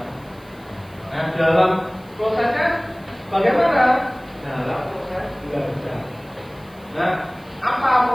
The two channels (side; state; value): right; noise; hiss, 28 dB below the sound